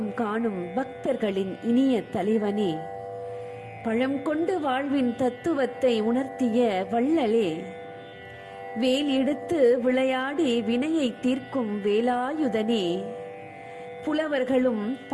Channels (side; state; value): both; identical; correlation 1.00